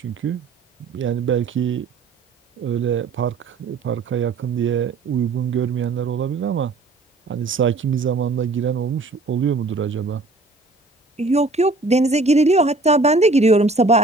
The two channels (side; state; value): left; quieter; 3.4 dB